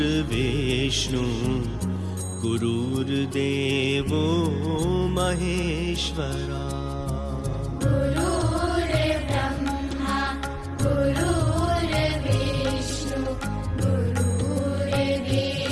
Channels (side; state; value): both; identical; correlation 1.00